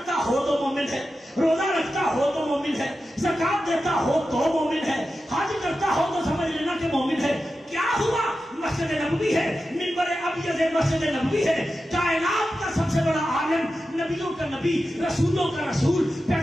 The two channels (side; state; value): both; normal; correlation 0.92